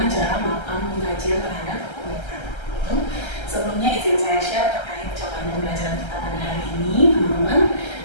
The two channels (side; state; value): right; late; 1.3 ms